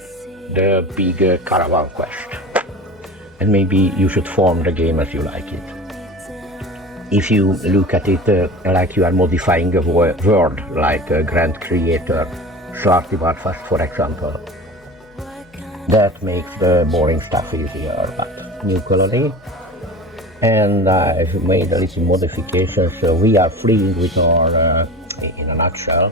the big caravan quest. And maybe you should form the game as you like it. If you look at it like you are modifying a world, like a grand creator, Svartivarfast for example, that makes the boring stuff easier. But new colony, and I've made a little modification, so we are fleeing with our in a nutshell,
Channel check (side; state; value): both; normal; correlation 0.35